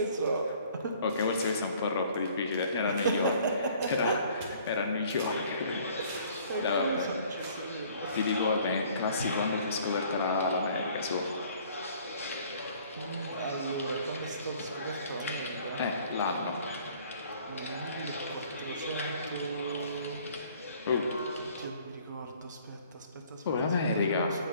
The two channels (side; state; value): both; inverted; correlation -0.56